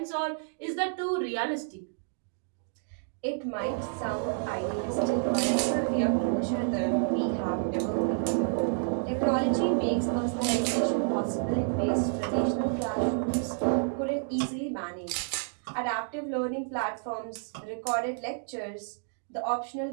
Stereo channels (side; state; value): left; silent; digital silence